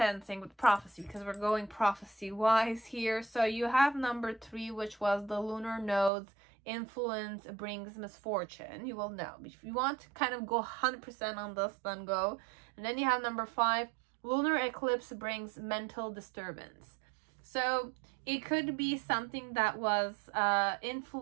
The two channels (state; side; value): drops out; left; at 6.1 s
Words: with prophecy, because we're going prophecy-wise here, so you have number 3, which was the lunar nodes influence brings misfortune. You will know. If you want to kind of go 100% on this, then go. And then you have number 5, lunar eclipse brings mental disturbance. So it could be something that was